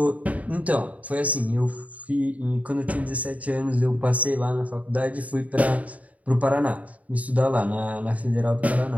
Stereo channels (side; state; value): left; late; 0.070 ms